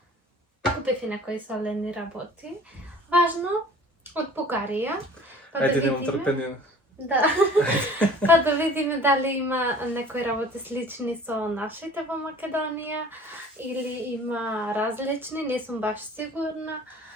купив и некои солени работи. Важно, од Бугарија. Ајде, немам трпение. Да. Па да видиме дали има некои работи слични со нашите во Македонија или има различни, не сум баш сигурна.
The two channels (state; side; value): normal; both; correlation 0.47